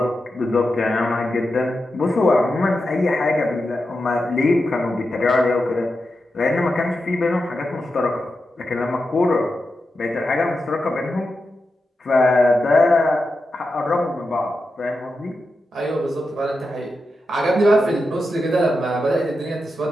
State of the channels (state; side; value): normal; both; correlation 0.89